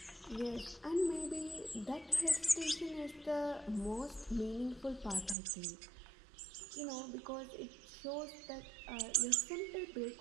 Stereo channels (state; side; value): drops out; left; at 5.4 s